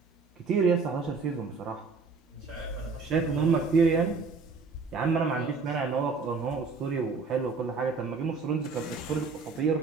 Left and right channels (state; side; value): quieter; left; 4.5 dB